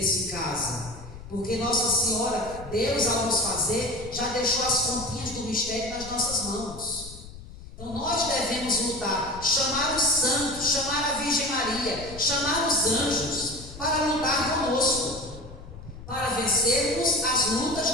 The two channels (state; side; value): noise; left; rumble, 14 dB below the sound